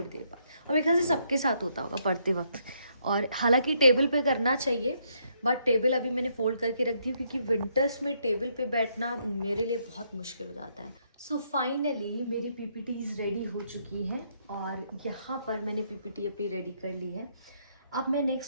देर बाद। और मेरे ख्याल से सबके साथ होता होगा पढ़ते वक्त। और हालांकि टेबल पे करना चाहिए, बट टेबल अभी मैंने फोल्ड करके रख दी, क्योंकि विंटर्स में टेबल पे बैठना मेरे लिए बहुत मुश्किल हो जाता है। सो फाइनली मेरी पीपीटीज रेडी हो चुकी हैं, और यहाँ पर मैंने पीपीटी अपनी रेडी कर ली है। अब मैं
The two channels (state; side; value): inverted; both; correlation -0.73